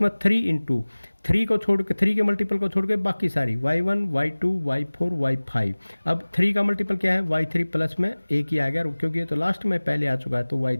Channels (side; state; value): both; inverted; correlation -1.00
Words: में 3 इंटू 3 को छोड़ के 3 के मल्टीपल को छोड़ के बाकी सारी y1 y2 y4 y5। अब 3 का मल्टीपल क्या है y3 प्लस में एक ही आ गया, क्योंकि ये तो लास्ट में पहले आ चुका है, तो